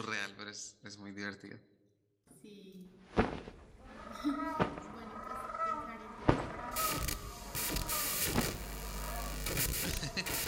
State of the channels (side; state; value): both; identical; correlation 1.00